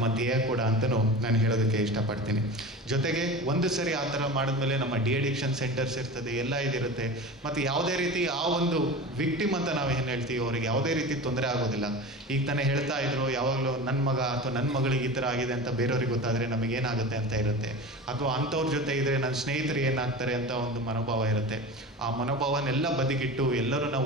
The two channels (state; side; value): normal; both; correlation 0.32